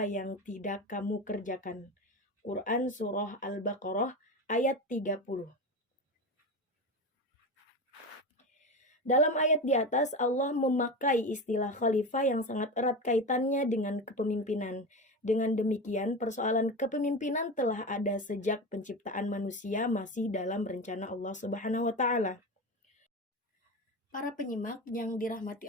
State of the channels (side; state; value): both; normal; correlation 0.23